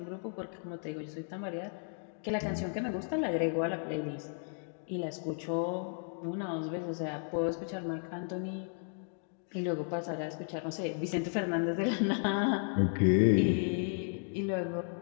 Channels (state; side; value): silent; right; 55 dB below the other